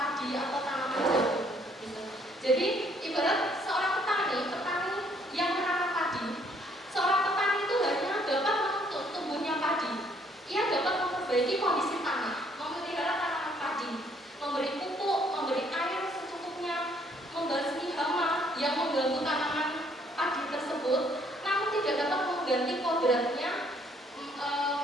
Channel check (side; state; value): both; normal; correlation 0.65